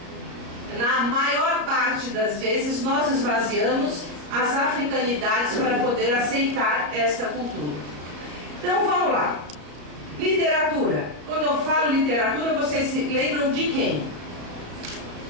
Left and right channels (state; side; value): late; left; 34 ms